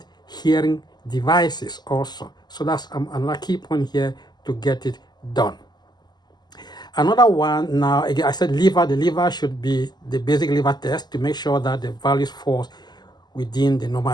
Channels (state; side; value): late; right; 0.21 ms